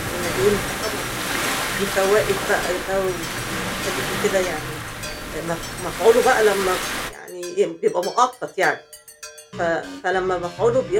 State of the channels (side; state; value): both; identical; correlation 1.00